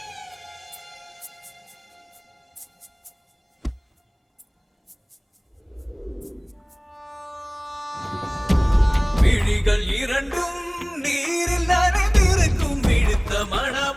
விழிகள் இரண்டும் நீரில் நனைந்திருக்கும் விழுத்த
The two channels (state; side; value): identical; both; correlation 1.00